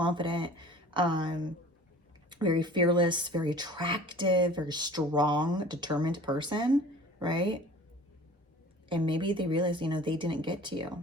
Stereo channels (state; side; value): normal; both; correlation 0.45